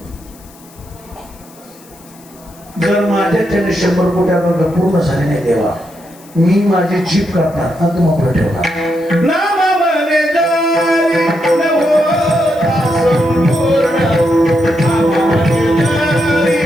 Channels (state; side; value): noise; left; hiss, 25 dB below the sound